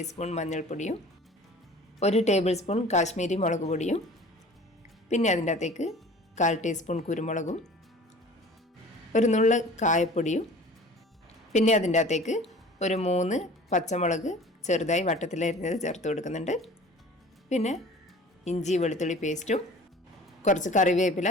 മഞ്ഞൾപ്പൊടിയും 1 ടേബിൾ സ്പൂൺ കാശ്മീരി മുളക് പൊടിയും പിന്നെ അതിൻ്റെ അകത്തേക്ക് 1/4 ടീസ്പൂൺ കുരുമുളകും ഒരു നുള്ള കായപ്പൊടിയും പിന്നെ അതിൻ്റെ അകത്തേക്ക് ഒരു 3 പച്ചമുളക് ചെറുതായി വട്ടത്തിലരിഞ്ഞത് ചേർത്ത് കൊടുക്കുന്നുണ്ട്. പിന്നെ ഇഞ്ചി വെളുത്തുള്ളി പേസ്റ്റും കുറച്ച്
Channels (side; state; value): both; normal; correlation 0.45